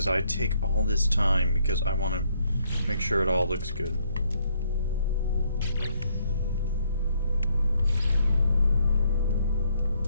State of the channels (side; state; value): both; inverted; correlation -0.70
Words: I take all this time because I want to make sure it all looks good.